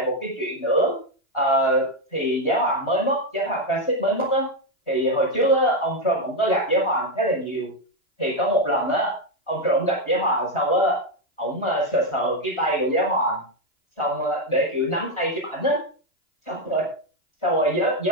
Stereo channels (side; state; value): right; late; 2.9 ms